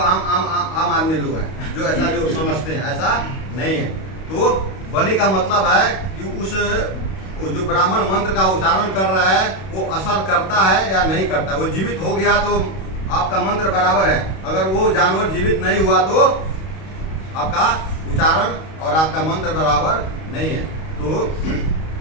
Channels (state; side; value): late; right; 31 ms